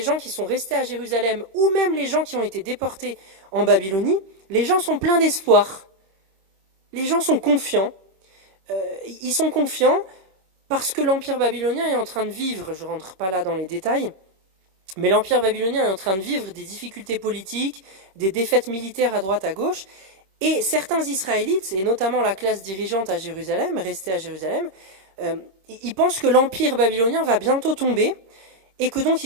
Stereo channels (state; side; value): late; left; 26 ms